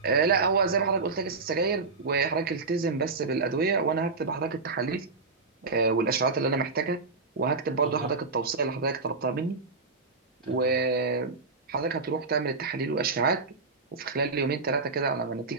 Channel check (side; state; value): left; quieter; 4.1 dB